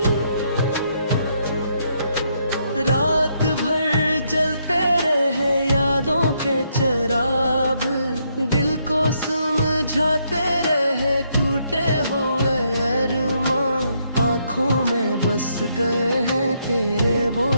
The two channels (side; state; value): both; inverted; correlation -0.75